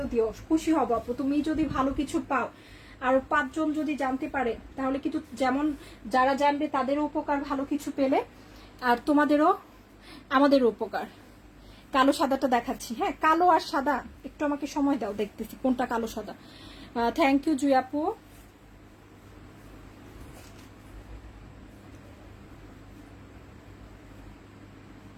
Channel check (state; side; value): identical; both; correlation 1.00